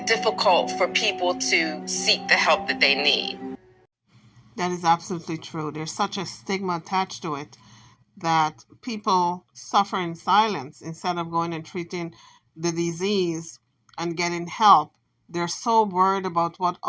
difficult for people to seek the help that they need. That is absolutely true. There's such a stigma attached to it that people suffer in silence instead of going and treating the disease and getting help. They're so worried about what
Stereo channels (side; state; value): both; identical; correlation 1.00